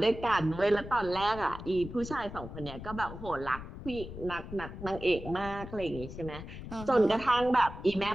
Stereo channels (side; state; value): left; noise; rumble, 11 dB below the sound